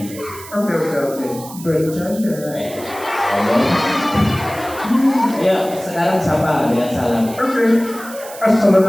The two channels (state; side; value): noise; right; hiss, 16 dB below the sound